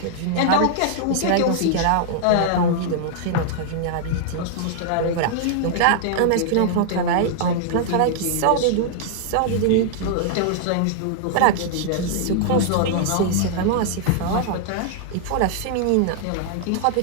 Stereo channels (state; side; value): different; both; correlation -0.01